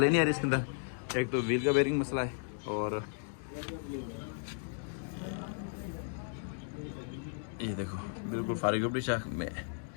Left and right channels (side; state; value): right; silent; digital silence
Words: नहीं आ रही इसके अंदर। एक तो व्हील का बेरिंग मसला है और ये देखो बिल्कुल फारिग अपनी शाख में,